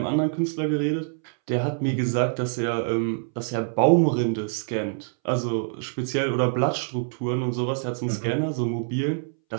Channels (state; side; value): silent; left; 61 dB below the other